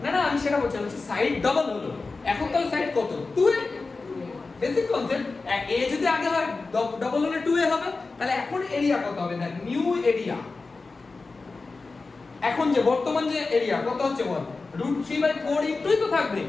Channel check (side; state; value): right; quieter; 3.9 dB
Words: না না আমি সেটা বলছি, সাইড ডাবল হলো, এখন তাহলে সাইড কত, 2a। বেসিক কনসেপ্ট, a যদি আগে হয় ডাবল হলে 2a হবে, তাহলে এখন এরিয়া কত হবে না, নিউ এরিয়া। এখন যে বর্তমান যে এরিয়া কত হচ্ছে বল, √3/4 ইনটুই তো থাকবে